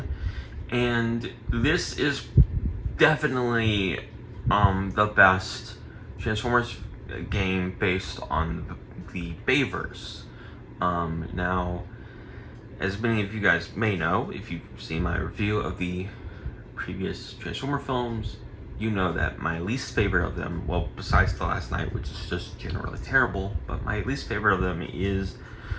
and this is definitely the best Transformers game based on the Bayverse. Now, as many of you guys may know, if you've seen my review of the previous Transformer films, you know that my least favorite of them, well, besides The Last Night, which is just generally terrible, but my least favorite of them is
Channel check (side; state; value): both; identical; correlation 1.00